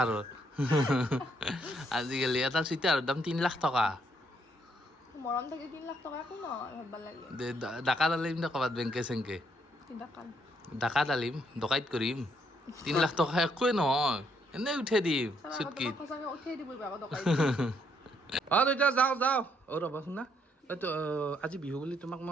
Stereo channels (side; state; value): both; normal; correlation 0.72